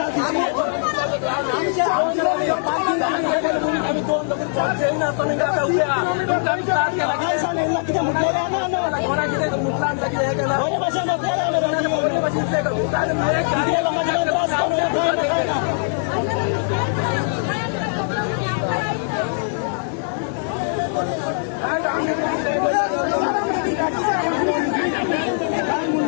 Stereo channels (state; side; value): silent; right; digital silence